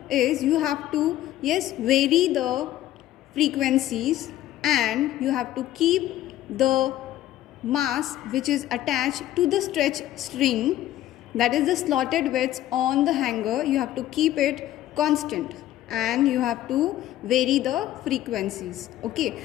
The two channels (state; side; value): quieter; right; 13.6 dB